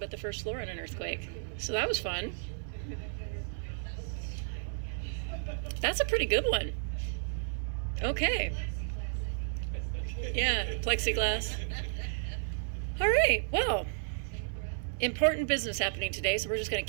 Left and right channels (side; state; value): left; silent; digital silence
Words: the first floor in an earthquake. So that was fun. That's a pretty good one. Okay. Yeah, plexiglass. All right, well, important business happening today, so we're just going to